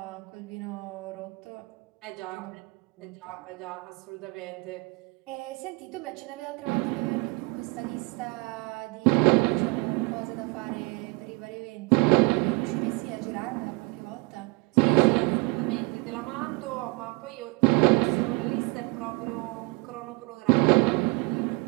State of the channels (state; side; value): quieter; left; 27.7 dB